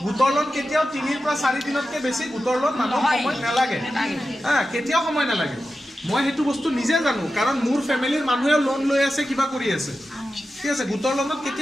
গোটৰ লোন কেতিয়াও 3 পৰা 4 দিনতকৈ বেছি গোটৰ লোন মানুহক সময় নালাগে কেতিয়াও সময় নালাগে মই সেইটো বস্তু নিজে জানো কাৰণ মোৰ ফেমিলিৰ মানুহেও লোন লৈ আছে কিবা কৰি আছে ঠিক আছে গোটৰ লোনত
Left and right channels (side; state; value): both; normal; correlation 0.92